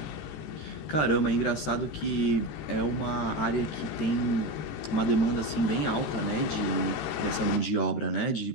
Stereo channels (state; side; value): late; right; 13 ms